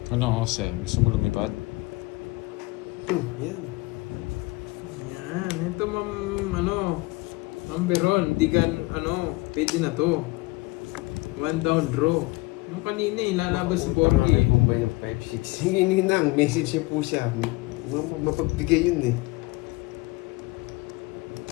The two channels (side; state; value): right; quieter; 23.0 dB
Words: Ano, Jose? Gusto mo lumipad? Yan. Yan, ito Ma'am Beron, di ka, pwede na to. 1 down draw. Nung kanina lalabas si Borgie. Bombay yung 5-6. Hindi nang, message niya po siya. Mapagbigay yun eh.